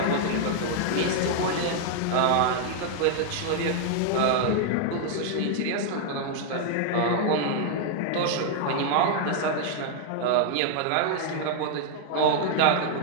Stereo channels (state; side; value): different; both; correlation 0.00